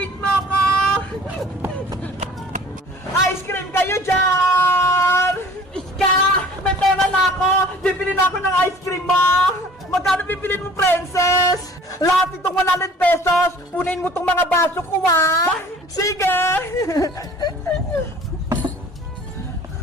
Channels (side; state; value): both; normal; correlation 0.49